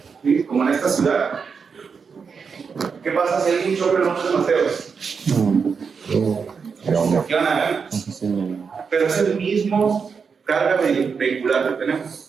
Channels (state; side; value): quieter; left; 5.7 dB